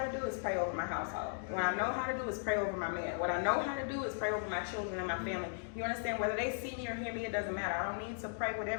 to do is pray over my household. What I know how to do is pray over my man. What I know how to do is pray over my children and my family. You understand? Whether they see me or hear me, it doesn't matter. I don't need to pray with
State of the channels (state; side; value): silent; right; digital silence